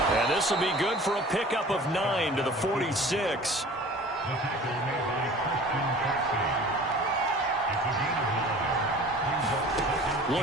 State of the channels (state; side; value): normal; both; correlation 0.44